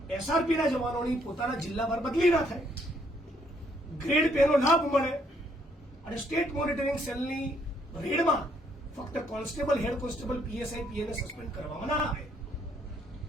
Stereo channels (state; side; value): normal; both; correlation 0.69